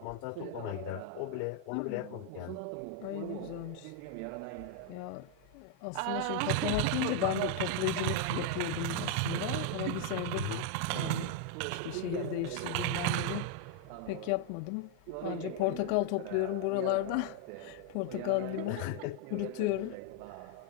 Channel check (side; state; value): both; different; correlation 0.00